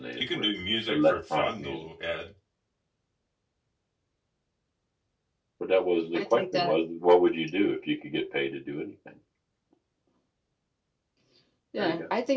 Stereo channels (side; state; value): both; identical; correlation 1.00